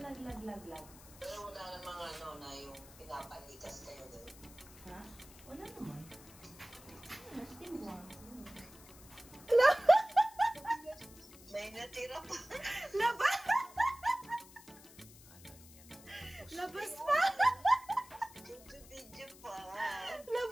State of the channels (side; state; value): left; noise; hiss, 20 dB below the sound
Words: Pero wala namang na yung pinapalikas kayo doon. Ha? Wala naman. Still warm. May natira pa. Labas pa! Video pa.